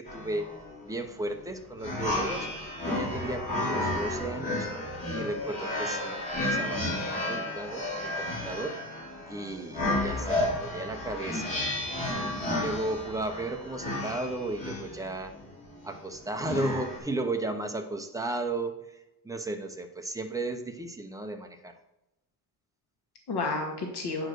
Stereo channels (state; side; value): normal; both; correlation 0.34